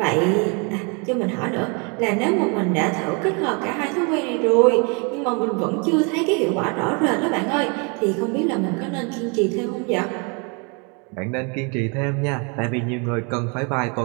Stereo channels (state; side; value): quieter; left; 33.4 dB